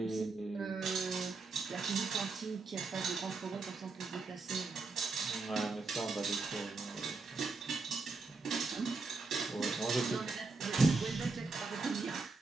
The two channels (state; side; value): quieter; left; 4.0 dB